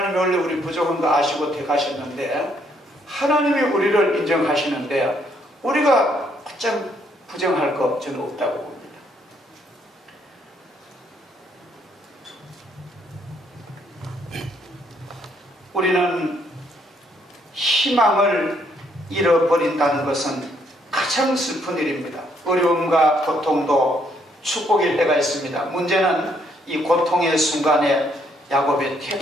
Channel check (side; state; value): both; normal; correlation 0.70